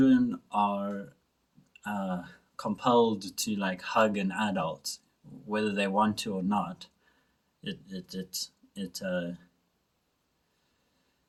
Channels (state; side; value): identical; both; correlation 1.00